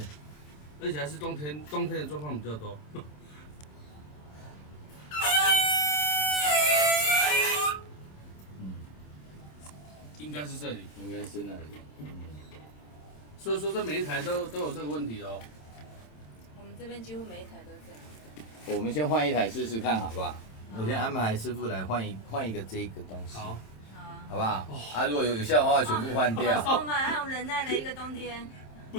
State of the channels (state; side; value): late; right; 27 ms